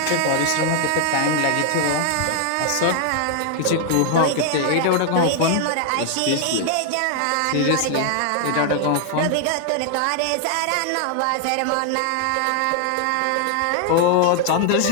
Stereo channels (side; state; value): both; different; correlation 0.00